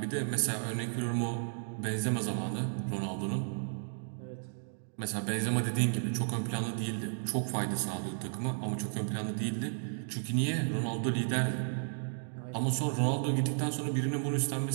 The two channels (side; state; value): left; silent; digital silence